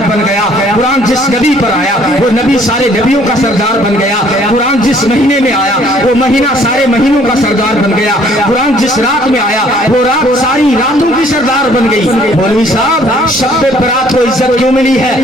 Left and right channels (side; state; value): both; normal; correlation 0.60